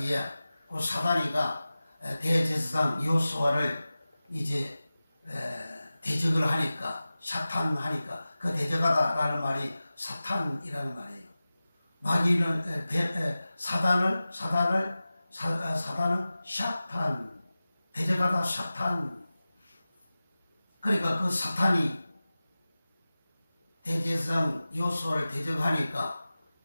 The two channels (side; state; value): both; inverted; correlation -0.96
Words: 그 사단이가 대제사장 여호수아를 이제 대적을 하니까, 사탄하니까, 그 대적하다라는 말이 사탄이라는 말이에요. 마귀는 사단은 샤탄, 대적하다 사탄. 그러니까 그 사탄이 대제사장 여호수아를 대적하니까